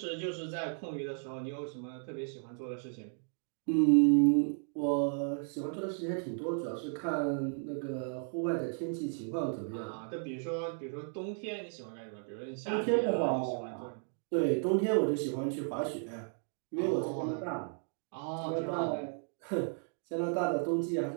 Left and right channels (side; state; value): left; silent; 55 dB below the other